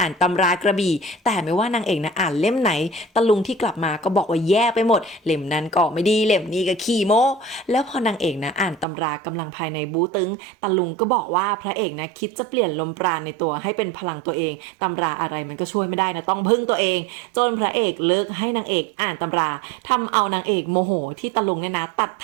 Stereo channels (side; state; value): left; drops out; at 8.8 s